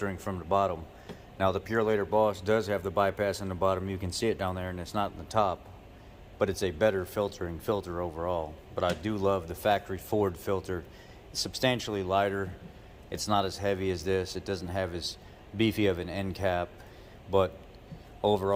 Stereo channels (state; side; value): identical; both; correlation 1.00